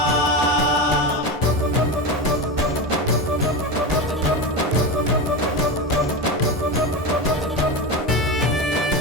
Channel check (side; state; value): both; normal; correlation 0.20